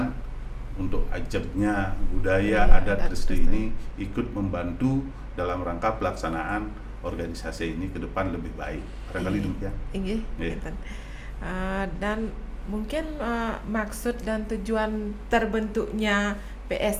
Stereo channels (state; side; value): identical; both; correlation 1.00